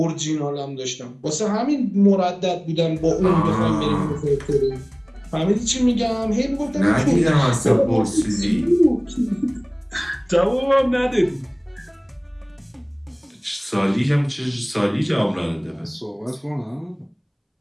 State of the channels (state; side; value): identical; both; correlation 1.00